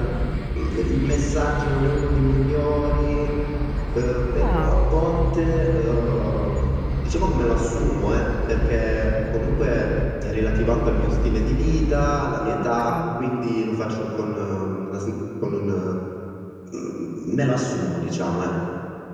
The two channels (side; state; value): both; identical; correlation 1.00